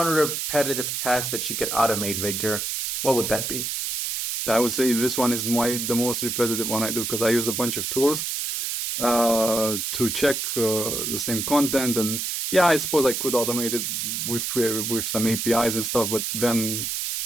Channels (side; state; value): right; noise; hiss, 2 dB below the sound